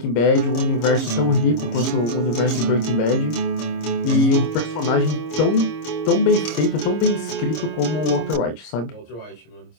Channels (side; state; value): right; late; 26 ms